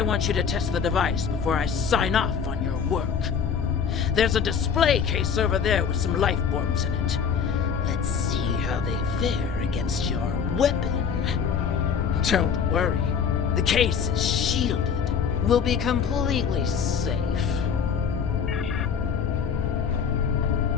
you to test the device before I sign off on your work. There's a display case over there with some life forms in it. Let's see how they fare against your weapon. Don't worry. The case is shielded. We'll be completely safe.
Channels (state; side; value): quieter; right; 6.8 dB